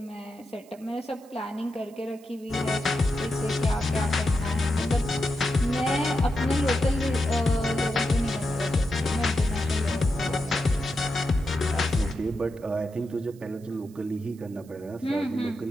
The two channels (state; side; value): noise; right; hiss, 27 dB below the sound